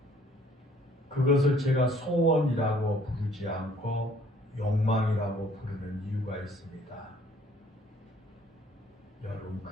그것을 제가 소원이라고 부르지 않고 욕망이라고 부르는 이유가 있습니다. 여러분,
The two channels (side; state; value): both; normal; correlation 0.59